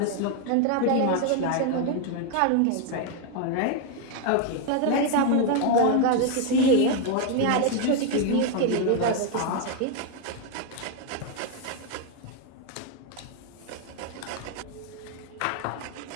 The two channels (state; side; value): different; both; correlation 0.01